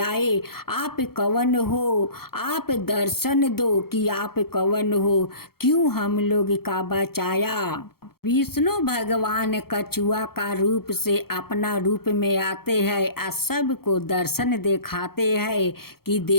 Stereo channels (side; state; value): right; late; 0.94 ms